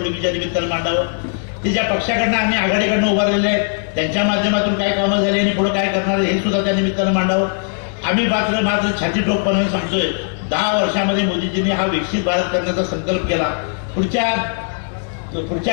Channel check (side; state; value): right; silent; 56 dB below the other